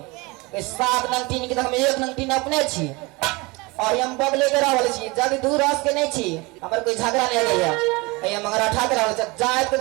इस 7 नंगटीन के तो हम 1 नंगटीन अपने छी और हम बगले के रहल छी जब दूर रस के नहीं छी हमर कोई झगड़ा नहीं गया ये मंगरा ठा के रहल छ जाए के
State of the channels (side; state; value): left; quieter; 25.1 dB